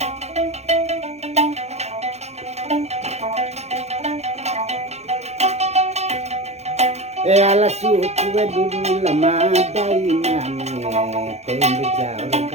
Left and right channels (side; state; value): left; late; 0.31 ms